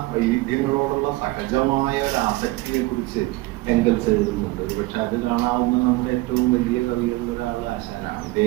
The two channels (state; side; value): quieter; left; 20.0 dB